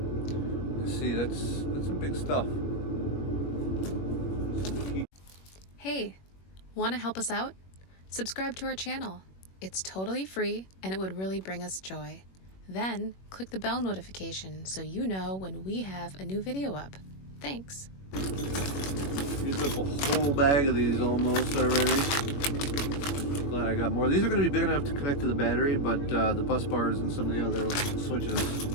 You see, that's some big stuff. Hey, want to help us out? Subscribe to our channel. It's totally free and it would really bring us joy. Then click the bell notification so you know when we have a new video up. Thanks. Used up a whole bag of these almost already. Glad I got more. These are going to be big enough to connect to the battery, but the bus bars and some of the other switches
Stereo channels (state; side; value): late; right; 21 ms